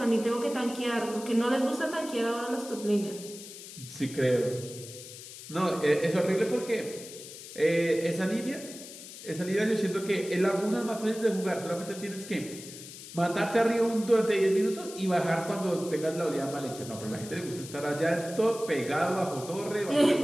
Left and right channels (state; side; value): noise; left; hiss, 14 dB below the sound